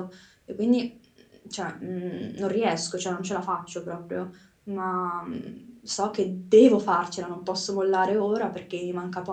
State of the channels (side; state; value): both; identical; correlation 1.00